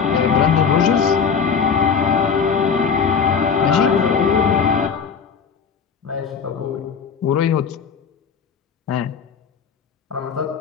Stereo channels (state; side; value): quieter; right; 6.2 dB